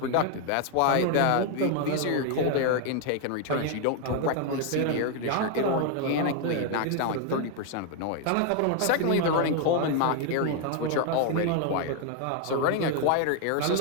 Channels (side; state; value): both; different; correlation 0.01